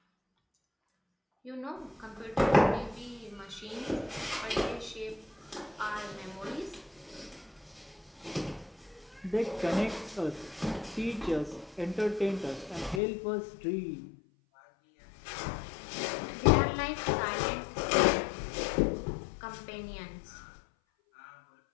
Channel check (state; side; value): drops out; right; at 13.0 s